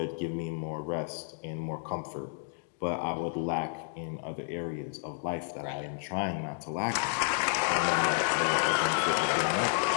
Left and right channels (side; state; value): right; silent; digital silence